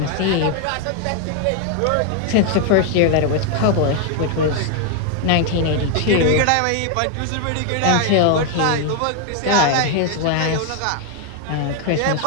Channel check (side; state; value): both; different; correlation 0.00